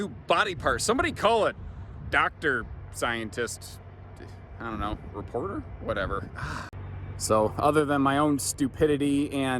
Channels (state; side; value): identical; both; correlation 1.00